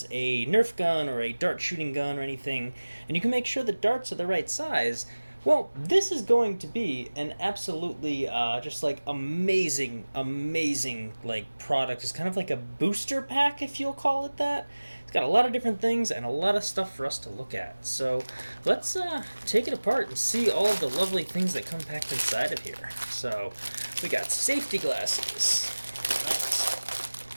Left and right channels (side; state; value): both; inverted; correlation -1.00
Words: a Nerf gun or a dart shooting gun or anything, and you can make sure the darts are the right size, well, this is going to be an absolutely just like amazing like product. It's kind of like a booster pack, if you'll call it that. It's got a lot of different things and a lot of stuff for us to look at. So let's take it apart and see all of the lovely things that come packed inside of here. So we got safety glasses.